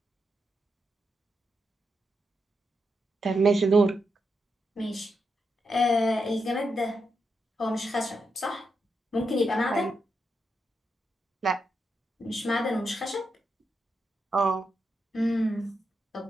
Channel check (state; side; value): normal; both; correlation 0.84